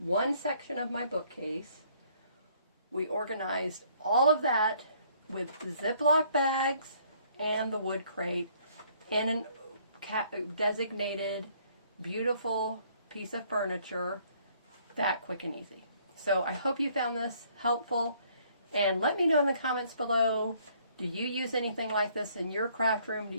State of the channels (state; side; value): inverted; both; correlation -0.63